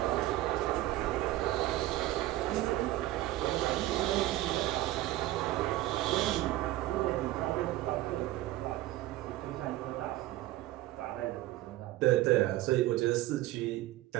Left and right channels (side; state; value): left; quieter; 16.0 dB